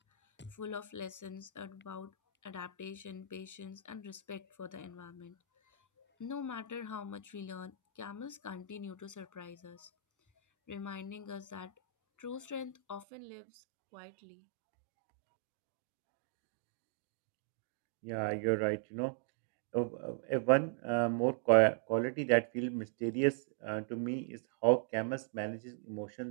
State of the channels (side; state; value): left; drops out; at 13.1 s